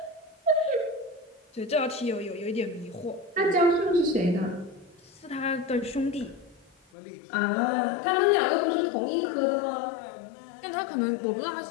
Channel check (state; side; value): drops out; right; at 6.8 s